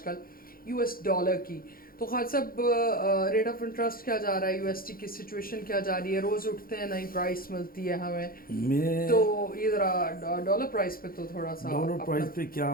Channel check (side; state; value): right; late; 0.42 ms